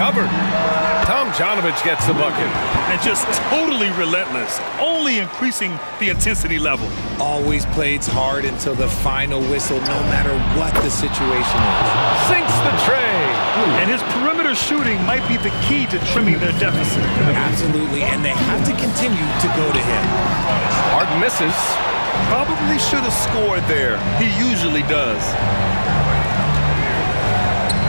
Tomjanovich gets the bucket. And just totally relentless, only increasing the intensity level. Always plays hard until the final whistle, no matter what the situation is. Sinks the tray. And his perimeter shooting might be the key to trimming their deficit. Absolutely, and they have to continue to go to him. Harden misses. Probably should have scored there. He usually does.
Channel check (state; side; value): inverted; both; correlation -1.00